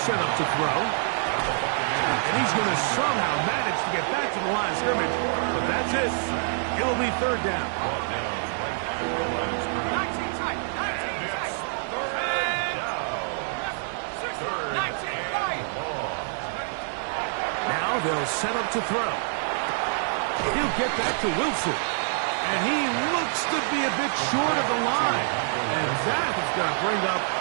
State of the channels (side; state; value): left; silent; digital silence